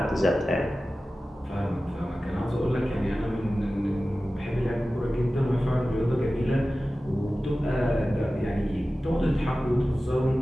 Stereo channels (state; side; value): normal; both; correlation 0.95